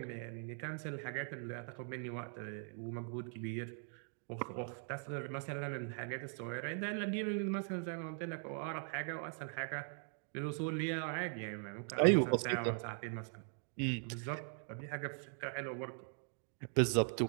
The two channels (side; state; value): left; silent; 51 dB below the other